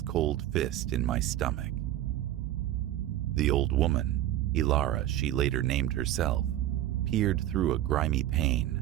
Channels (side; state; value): left; quieter; 13.2 dB